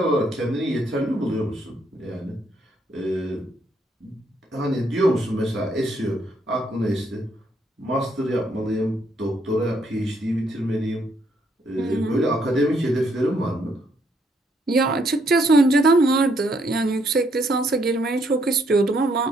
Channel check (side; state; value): both; normal; correlation 0.72